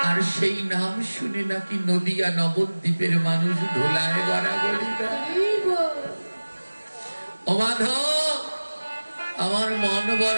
আর সেই নাম শুনে নাকি নদিয়া নবদ্বীপের মানুষ ধোলায় গড়াগড়ি দেয়। ও মাধব, আমার মন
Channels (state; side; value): inverted; both; correlation -1.00